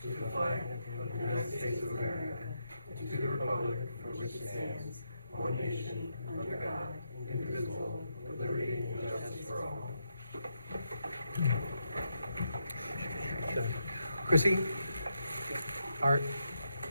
to the flag of the United States of America and to the republic for which it stands, one nation, under God, indivisible, with liberty and justice for all. Chrissy? Art?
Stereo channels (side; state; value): both; inverted; correlation -0.81